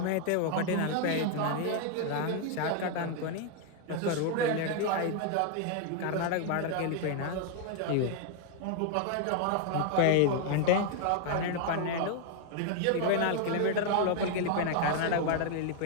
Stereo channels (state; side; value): different; both; correlation 0.00